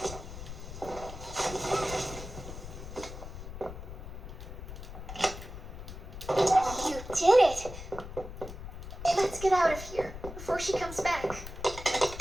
You did it! Let's get out of here before she comes back.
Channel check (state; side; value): noise; left; rumble, 10 dB below the sound